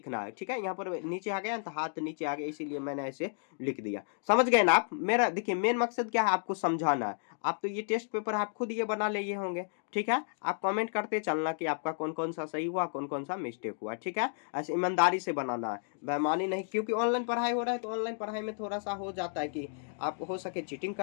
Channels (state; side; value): silent; right; digital silence